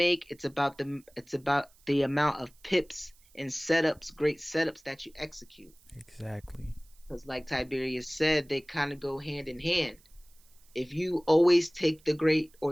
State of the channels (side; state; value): right; noise; hiss, 30 dB below the sound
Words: It's about the amount of pips and setups, great setups that you execute. Exactly. Because like Tiberius said, they kind of go hand in hand. If you always take the great or